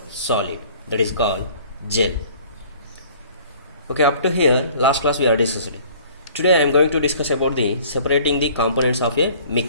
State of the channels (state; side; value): inverted; both; correlation -0.52